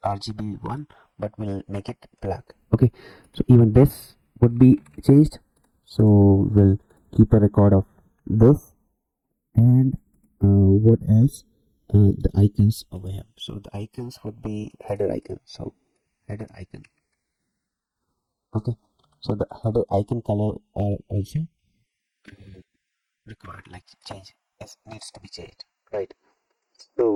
RGB1, but we'll make it black. Okay, so even this would be changed. So we'll keep a record of this. And what else? The icons over here. So the icons would be header icon. So header icon. Okay, so the header icon color are also required, like change, it needs to be changed, right?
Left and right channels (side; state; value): both; identical; correlation 1.00